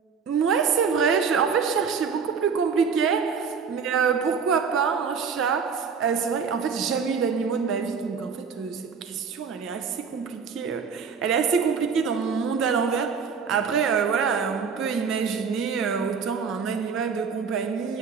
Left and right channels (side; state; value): left; quieter; 6.0 dB